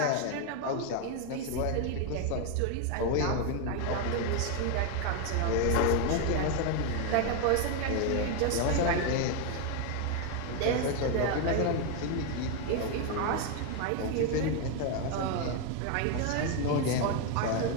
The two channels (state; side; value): different; both; correlation 0.01